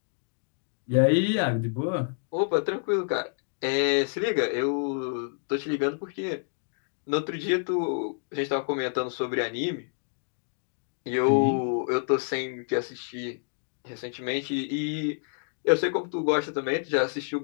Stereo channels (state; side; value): silent; right; digital silence